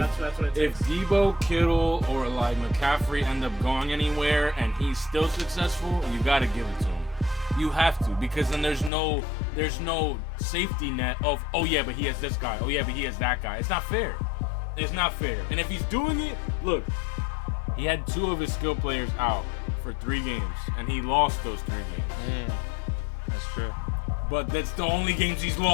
That's what it if takes. Debo, Kittle, or like McCaffrey end up going anywhere and he's still successful, you got to give it to him. You have to, because then there's no safety net of, oh yeah, but he has this guy. Oh yeah, but he has that guy. It's not fair. It's not fair. And if he's doing it, look, he had 2 of his skill players out for 3 games, and he lost those 3 games. That's true. But that's the only games he's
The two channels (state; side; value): drops out; right; at 8.9 s